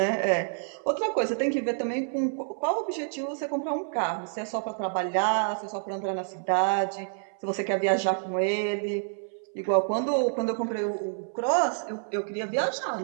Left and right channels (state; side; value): silent; left; 59 dB below the other